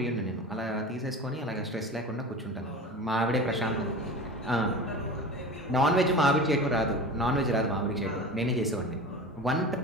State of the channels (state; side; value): normal; both; correlation 0.33